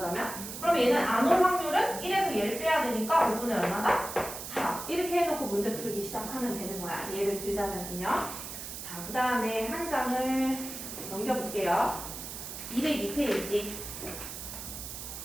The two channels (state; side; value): noise; right; hiss, 9 dB below the sound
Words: 그럼 얘는 안 올 확률은 1에서 얘를 빼야 되니까 5분의 얼마다? 4. 이렇게 해놓고 문제 풀기 시작하면 되는 거야. 예를 들자면요. 자, 그 다음에 한 장을 넘겨볼게요. 202페이지.